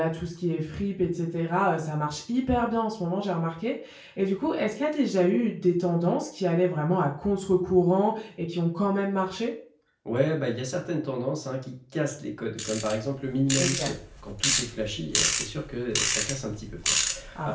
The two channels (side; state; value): both; identical; correlation 1.00